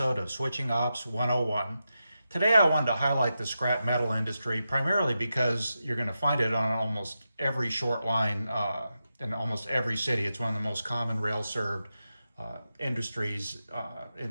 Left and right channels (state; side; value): inverted; both; correlation -0.89